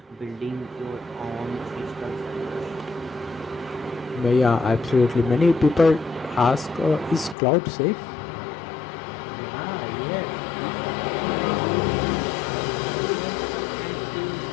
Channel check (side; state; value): right; drops out; at 7.4 s